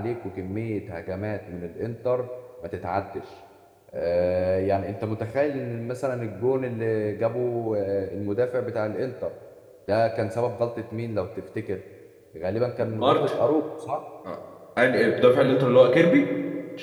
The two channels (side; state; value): both; identical; correlation 1.00